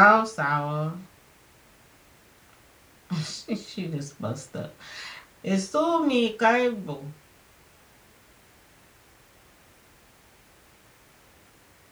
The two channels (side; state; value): both; identical; correlation 1.00